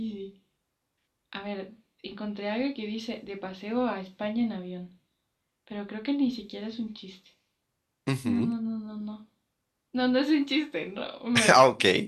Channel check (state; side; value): identical; both; correlation 1.00